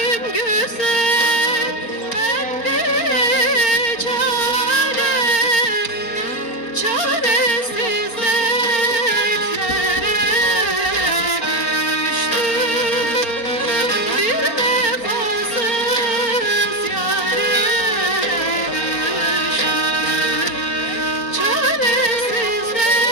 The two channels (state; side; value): late; right; 4.4 ms